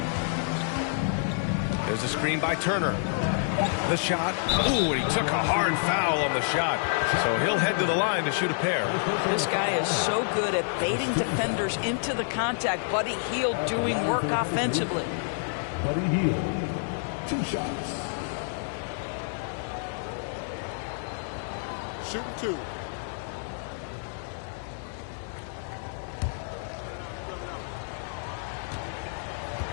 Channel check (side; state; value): right; silent; 59 dB below the other